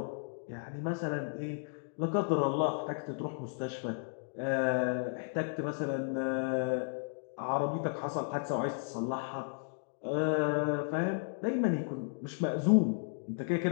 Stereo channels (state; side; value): silent; right; digital silence